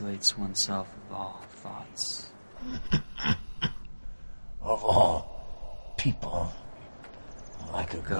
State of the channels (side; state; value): both; inverted; correlation -1.00